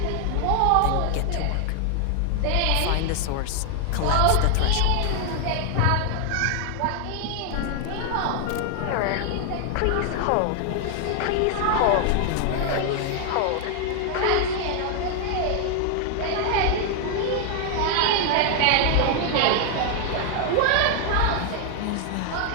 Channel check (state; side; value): different; both; correlation 0.00